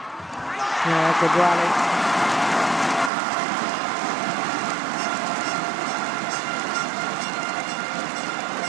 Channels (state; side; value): drops out; left; at 3.1 s